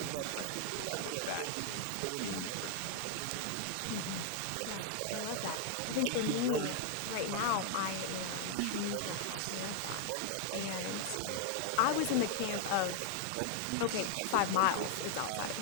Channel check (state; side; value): different; both; correlation 0.00